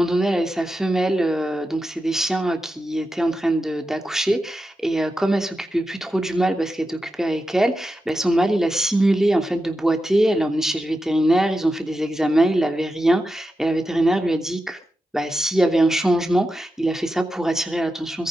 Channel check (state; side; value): normal; both; correlation 0.90